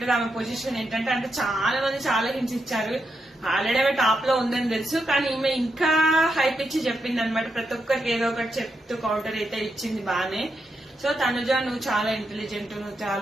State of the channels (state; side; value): normal; both; correlation 0.83